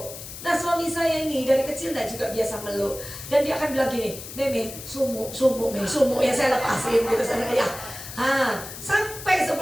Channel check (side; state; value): left; noise; hiss, 12 dB below the sound